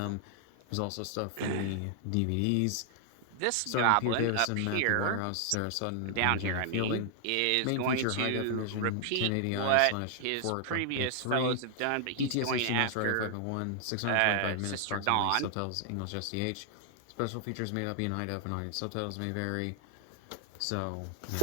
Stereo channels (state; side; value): different; both; correlation 0.00